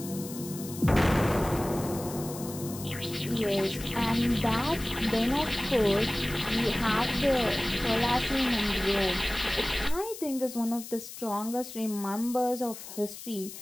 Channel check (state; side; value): noise; left; hiss, 12 dB below the sound